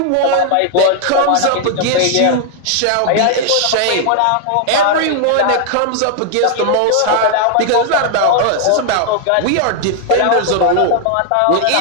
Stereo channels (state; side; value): different; both; correlation 0.00